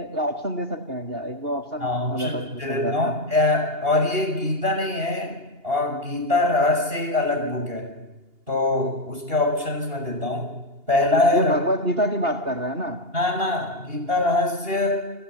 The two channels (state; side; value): late; left; 2.8 ms